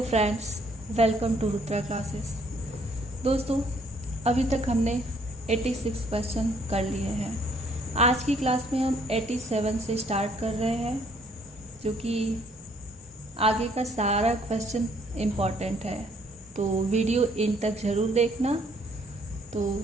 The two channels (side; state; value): both; normal; correlation 0.64